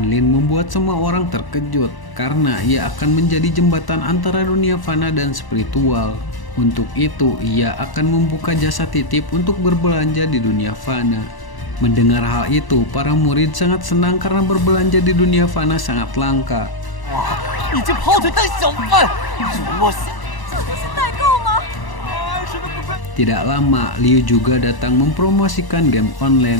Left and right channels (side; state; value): right; late; 1.0 ms